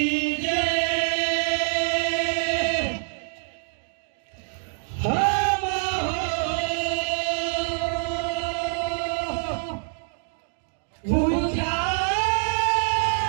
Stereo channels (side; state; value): left; silent; digital silence